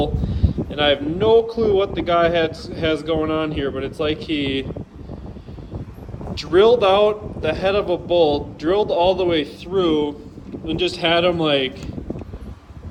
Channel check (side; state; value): both; identical; correlation 1.00